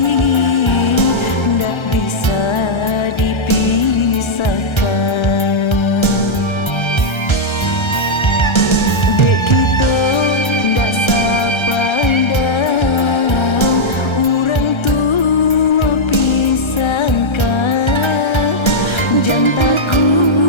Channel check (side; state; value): right; late; 1.3 ms